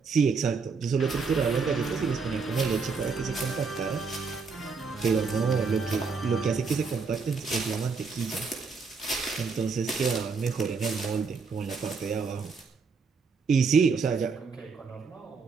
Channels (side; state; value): left; quieter; 4.9 dB